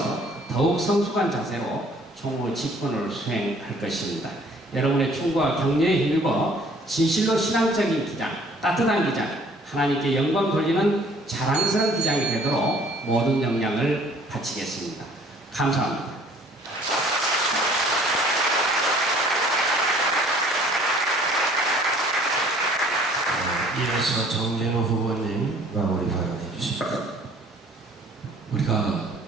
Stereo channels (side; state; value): both; normal; correlation 0.56